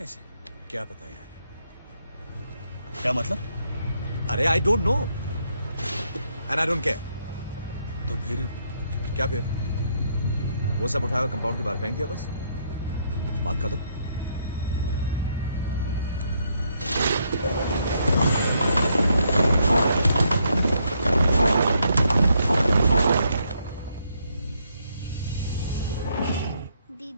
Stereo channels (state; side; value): inverted; both; correlation -0.74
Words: क्या पता यार। क्या मतलब? अरे I don't know and I don't care. तो फिर क्या फिर? वो सब उठाया कंपाउंड के बाहर फेंक दिया, बस बात खत्म।